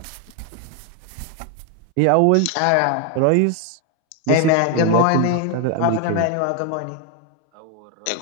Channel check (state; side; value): different; both; correlation 0.01